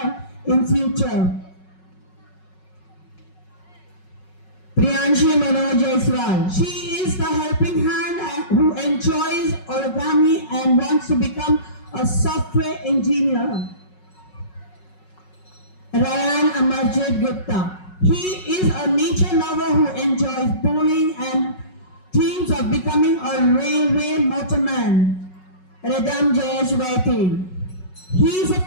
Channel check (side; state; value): right; late; 5.4 ms